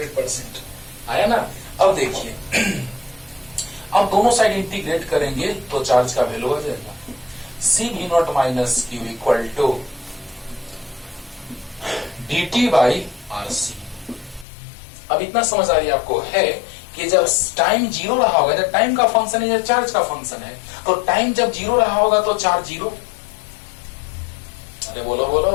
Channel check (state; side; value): drops out; right; at 14.5 s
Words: आया ना। अब देखिए अब दोनों साइड इंटीग्रेट करेंगे तो चार्ज का वैल्यू आ जाएगा C V naught minus Q equal to dt by RC। अब इतना समझ आ रही है आपको है कि जब टाइम 0 रहा होगा, जब टाइम का फंक्शन है या चार्ज का फंक्शन है, तो टाइम जब 0 रहा होगा तो चार्ज 0। अरे बोलो